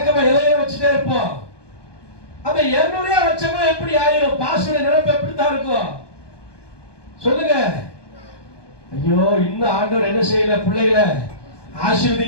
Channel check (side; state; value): right; late; 1.2 ms